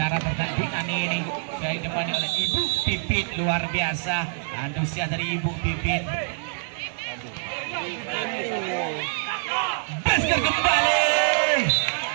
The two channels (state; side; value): silent; left; 62 dB below the other